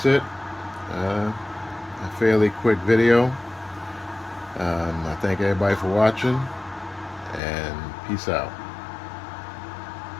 it. A fairly quick video. I thank everybody for watching, and peace out.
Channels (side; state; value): right; drops out; at 7.4 s